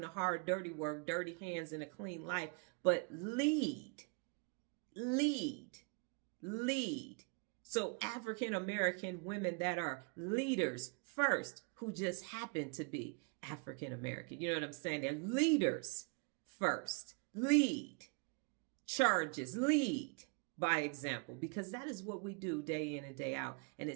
the hard, dirty work, dirty hands and a clean life, but lead. So African-American women that are leaders first, who just happen to be African-American. You know what I'm saying? They're leaders first. Lead. Charges. Lead by example, because that is what we do day in and day out. And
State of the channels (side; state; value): left; quieter; 36.2 dB